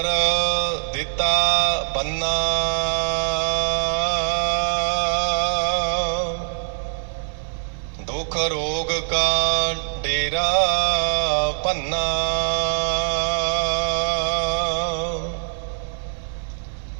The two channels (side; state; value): left; silent; 61 dB below the other